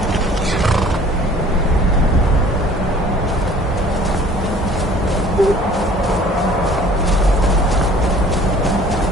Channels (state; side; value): normal; both; correlation 0.52